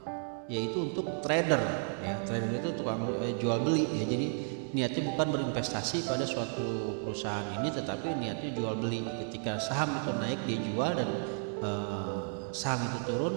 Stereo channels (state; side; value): silent; left; 56 dB below the other